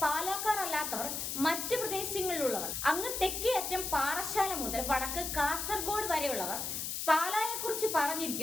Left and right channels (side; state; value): left; noise; hiss, 3 dB below the sound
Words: പാലക്കാർ അല്ലാത്തവർ മറ്റ് പ്രദേശങ്ങളിലുള്ളവർ, അങ്ങ് തെക്കേ അറ്റം പാറശാല മുതൽ വടക്ക് കാസർഗോഡ് വരെയുള്ളവർ പാലായെ കുറിച്ച്